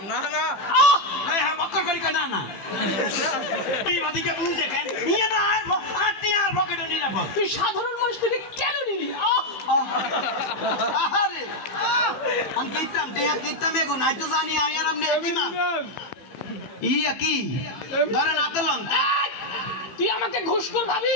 না না, হ্যাঁ বক্কর করি না না, এই বাদিকে বুঝে কেন ইয়ে না, আর টিয়ার পকেটে নিরাপদ। তুই সাধারণ মানুষ থেকে কেন নিলি? আরে আমি কিতাম টিয়া কিতাম এগো নাই তো জানি আমি আর আপনি একই না ইয়া কি ধরেন আতলন। তুই আমাকে ঘুষখোর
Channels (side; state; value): right; late; 15 ms